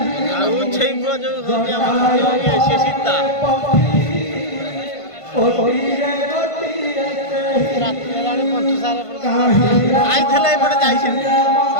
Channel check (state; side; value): late; right; 1.5 ms